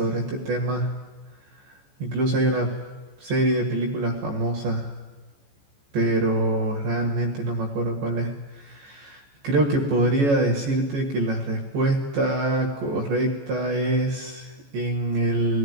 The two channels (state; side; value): late; left; 14 ms